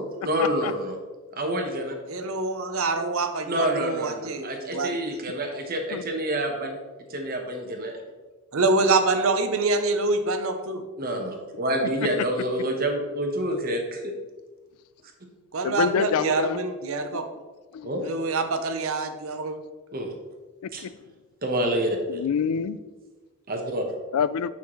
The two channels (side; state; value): both; normal; correlation -0.04